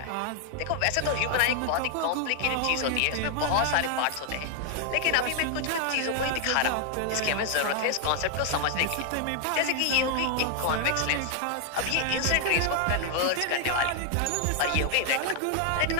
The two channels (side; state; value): both; different; correlation 0.00